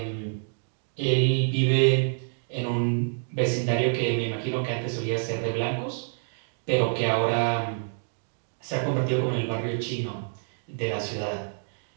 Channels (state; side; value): silent; left; digital silence